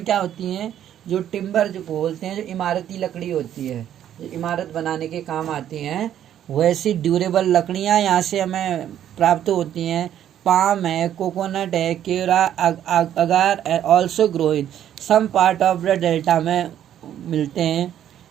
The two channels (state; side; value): quieter; left; 10.7 dB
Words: क्या होती हैं, जो टिम्बर जो बोलते हैं, जो इमारती लकड़ी होती है, जो इमारत बनाने के काम आती हैं, वैसी ड्यूरेबल लकड़ियाँ यहाँ से हमें प्राप्त होती हैं। पाम है, कोकोनट है, केरा, agar also grow in some part of the delta में मिलते हैं।